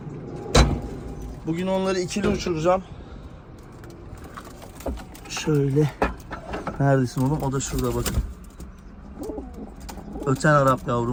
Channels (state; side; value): identical; both; correlation 1.00